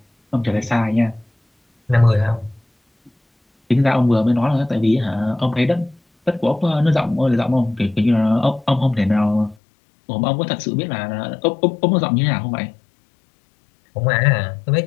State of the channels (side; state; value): right; drops out; at 9.6 s